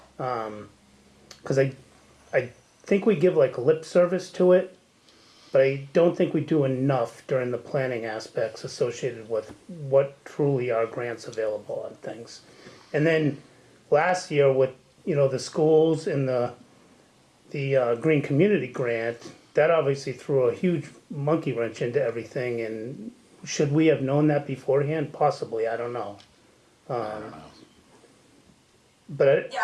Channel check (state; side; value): identical; both; correlation 1.00